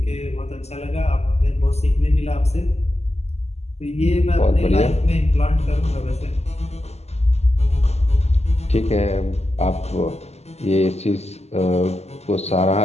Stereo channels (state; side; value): late; right; 0.31 ms